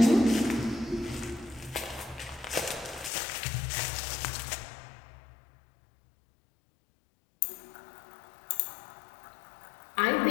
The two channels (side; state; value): right; drops out; at 3.1 s